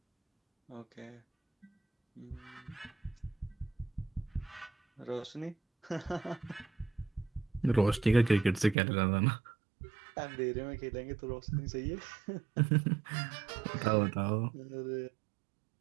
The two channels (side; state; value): left; drops out; at 8.8 s